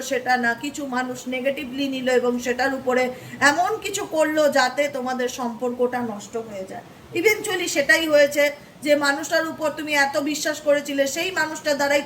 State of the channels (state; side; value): identical; both; correlation 1.00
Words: সেটা না, কিছু মানুষ নেগেটিভলি নিল এবং সেটার উপরে এমন কিছু করলো যাতে তোমাদের সম্পর্কটা নষ্ট হয়ে যায়। ইভেনচুয়ালি সেটাই হয়েছে। যে মানুষটার উপর তুমি এত বিশ্বাস করেছিলে, সেই মানুষটার দ্বারাই